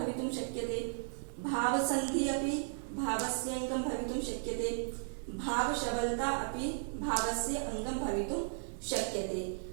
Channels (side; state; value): left; silent; digital silence